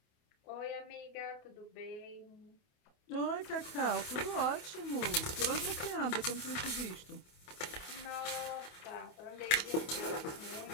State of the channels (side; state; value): right; late; 28 ms